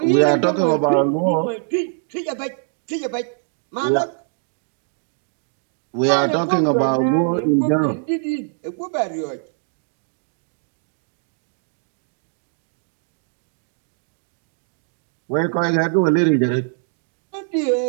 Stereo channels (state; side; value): silent; left; 64 dB below the other